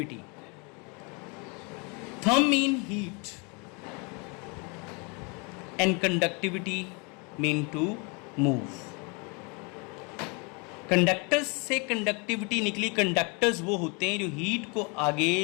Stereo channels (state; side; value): quieter; right; 32.0 dB